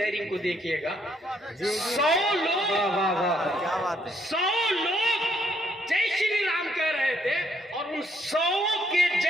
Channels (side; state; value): both; normal; correlation 0.70